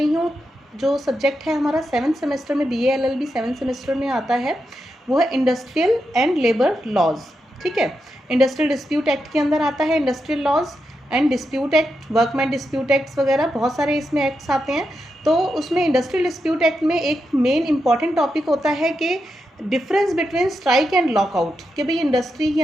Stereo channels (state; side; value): normal; both; correlation 0.86